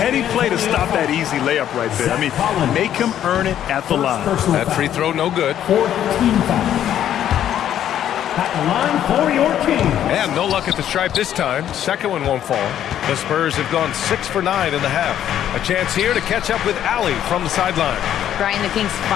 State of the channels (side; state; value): right; quieter; 10.8 dB